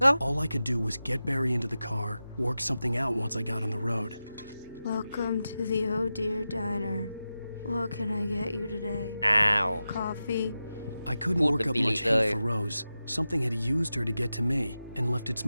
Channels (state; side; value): inverted; both; correlation -0.93